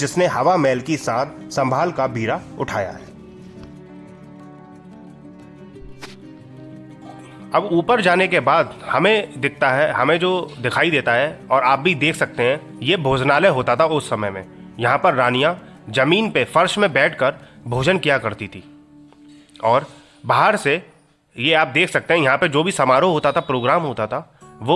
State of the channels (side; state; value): both; identical; correlation 1.00